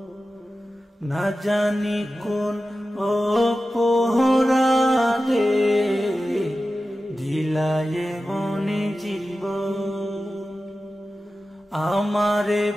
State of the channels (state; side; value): normal; both; correlation 0.94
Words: না জানি কোন অপরাধে দিলায়ে মনি জীবন, আমারে